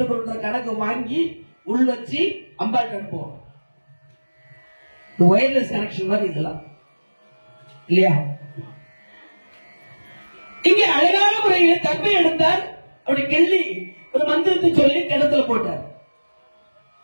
கணக்கு வாங்கி உள் வச்சு அம்பாள் அனுப்புவோம். வயர்லெஸ் கனெக்ஷன் மாதிரி இதெல்லாம் இல்லையா? இங்க அழகான முறையில் தர்பை எடுத்தார். அப்படி கிள்ளி ஒரு மந்திரத்தை சொல்லி கிணத்துல போட்டார்.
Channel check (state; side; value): inverted; both; correlation -1.00